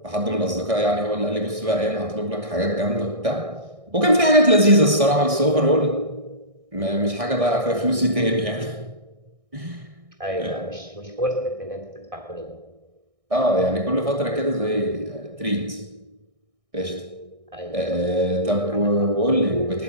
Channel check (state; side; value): late; left; 1.6 ms